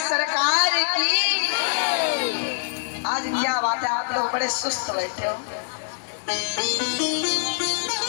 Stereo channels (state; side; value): silent; right; digital silence